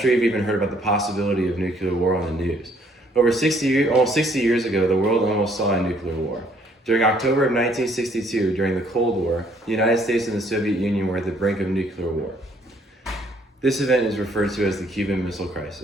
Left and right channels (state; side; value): normal; both; correlation 0.64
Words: you've even heard about the possibility of nuclear war on the news. Almost 60 years ago, the world almost saw a nuclear war. During October of 1962, during the Cold War, the United States and the Soviet Union were at the brink of nuclear war. This event is referred to as the Cuban Missile